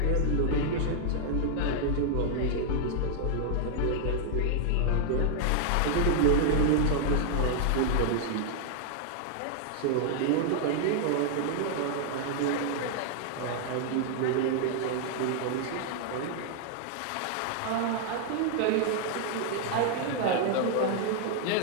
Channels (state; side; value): different; both; correlation 0.00